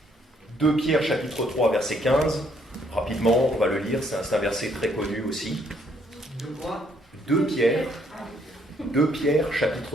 2 Pierre chapitre 3 verset 15, rapidement on va le lire, c'est un verset très connu aussi. 2 Pierre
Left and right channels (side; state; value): both; normal; correlation 0.69